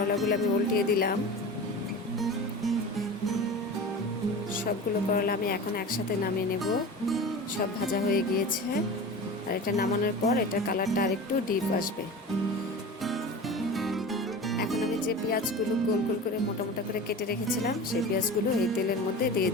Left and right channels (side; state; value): both; normal; correlation 0.33